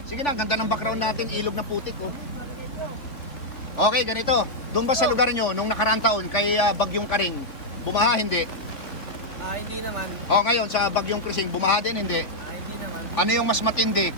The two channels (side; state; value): right; late; 3.4 ms